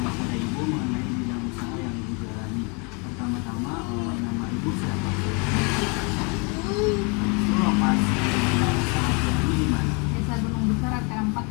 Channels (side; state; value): right; quieter; 32.5 dB